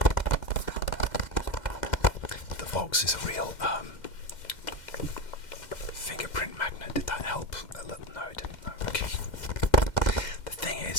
The box is a real fingerprint magnet. Did that help? No, it didn't. No, okay. The thing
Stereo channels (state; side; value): late; right; 2.0 ms